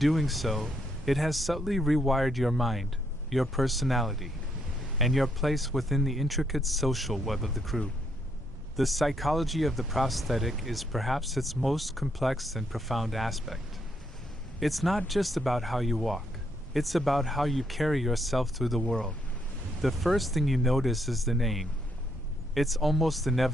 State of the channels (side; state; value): both; normal; correlation 0.75